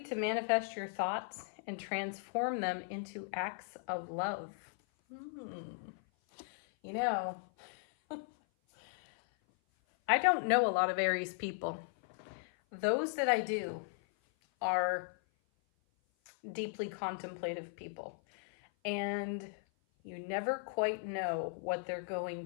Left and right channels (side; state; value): right; silent; 53 dB below the other